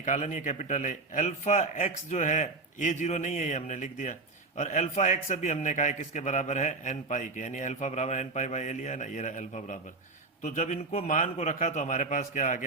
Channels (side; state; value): left; quieter; 3.6 dB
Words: नहीं है, कैपिटल ए। अल्फा एक्स जो है ए 0 नहीं है, ये हमने लिख दिया। और अल्फा एक्स अभी हमने कहा है किसके बराबर है, एन पाई के, यानी अल्फा बराबर एन पाई बाई ए लिया है ना, ये रहा अल्फा बराबर। तो जब इनको मान को रखा तो हमारे पास क्या आ